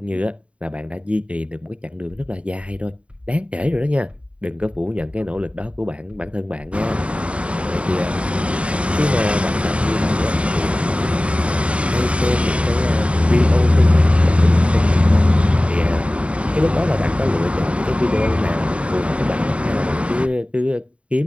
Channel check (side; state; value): left; late; 0.061 ms